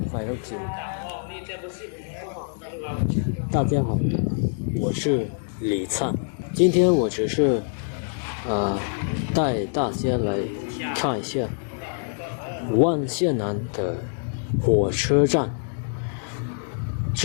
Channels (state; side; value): silent; right; 62 dB below the other